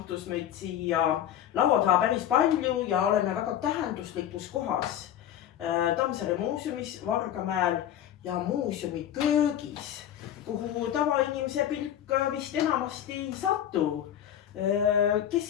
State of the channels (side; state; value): right; quieter; 10.7 dB